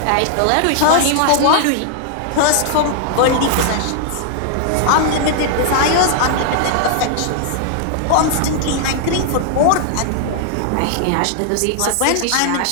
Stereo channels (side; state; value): both; different; correlation 0.00